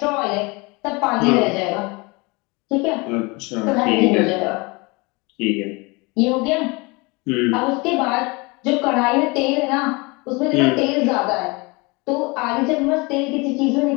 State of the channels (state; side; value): quieter; right; 26.7 dB